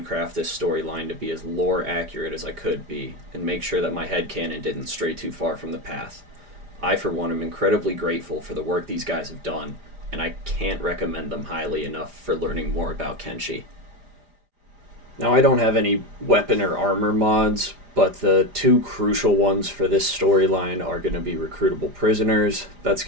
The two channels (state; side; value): late; left; 4.9 ms